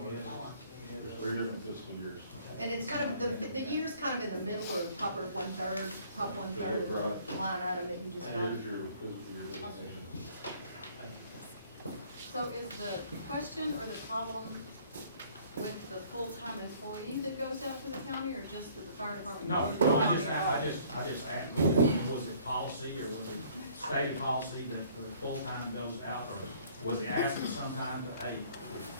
Three different fiscal years. And it's kind of, the year's kind of in the middle or top or one-third, top one-third of the line item that you just And got. here's your fiscal year designation. So is the question or the problem with the full-time employee that goes out to the county, or just that the fire department? No, goes to the no, county? I just asked, was it policy, or was it stated policy that the full-time goes out, or was he asked sometime to, hey,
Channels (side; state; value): both; inverted; correlation -0.57